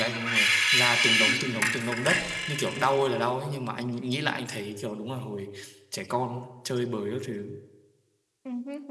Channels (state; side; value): identical; both; correlation 1.00